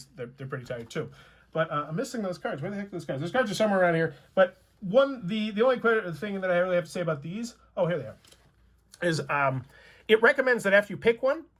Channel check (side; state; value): both; identical; correlation 1.00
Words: they're pretty tired too. But I'm missing those cards. Where the heck are those cards? Those cards are somewhere around here. But the only thing that I really have to say about these, oh, here they are, is it recommends that after you pick one,